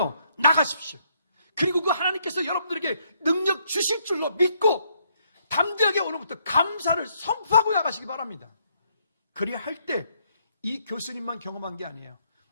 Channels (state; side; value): inverted; both; correlation -0.72